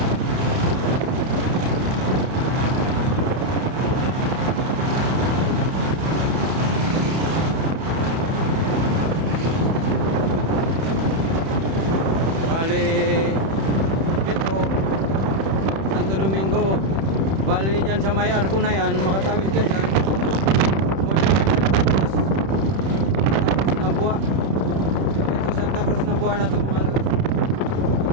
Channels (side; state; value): left; late; 31 ms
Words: Bali dito Santo Domingo, bali dyan sa may arko na yan, makatawid ka dyan, wala na Santa Cruz Nabuha. Ito Santa Cruz Nabuha na ito mga lods.